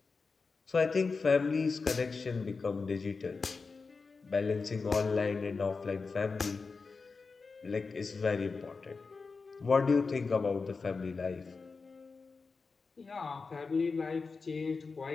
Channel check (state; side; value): quieter; right; 4.4 dB